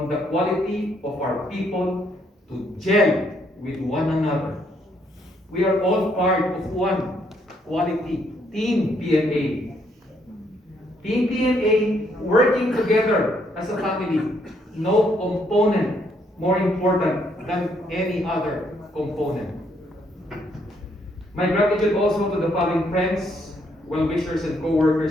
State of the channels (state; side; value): normal; both; correlation 0.71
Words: the quality of our people to gel with one another. We are all part of one quality Team PMA. Team PMA working together as a family. No component more important than any other component. My gratitude also to the following friends, well-wishers, and